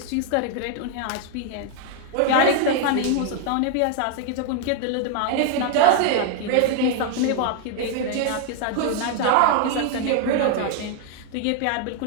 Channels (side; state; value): both; different; correlation 0.00